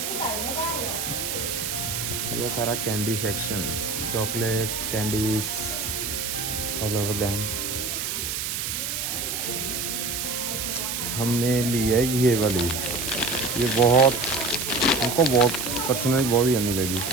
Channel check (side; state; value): right; noise; hiss, 3 dB below the sound